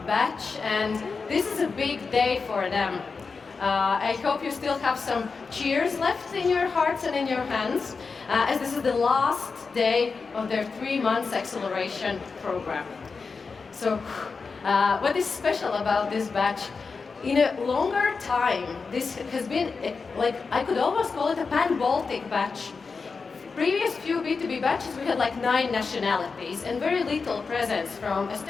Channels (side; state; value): right; quieter; 4.8 dB